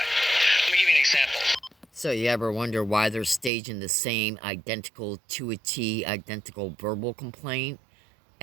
Let me give you an example. So you ever wonder why they're staging the same identical to a T, identical verbal complaint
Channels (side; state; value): left; drops out; at 3.5 s